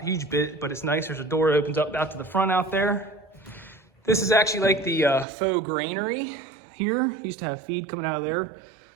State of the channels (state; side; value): drops out; left; at 5.2 s